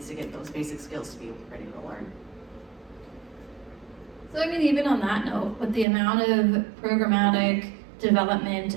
to get those basic skills to be ready to learn. So I mean, even on that note, with the amount of programmatic development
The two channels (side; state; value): left; drops out; at 5.9 s